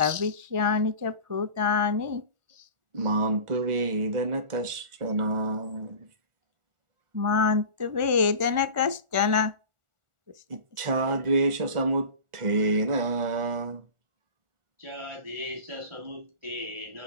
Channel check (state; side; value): late; left; 1.4 ms